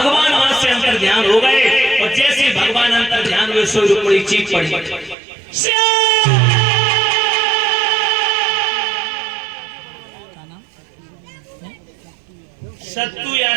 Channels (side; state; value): left; drops out; at 5.2 s